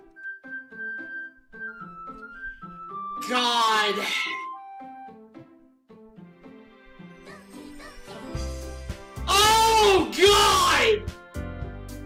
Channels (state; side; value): identical; both; correlation 1.00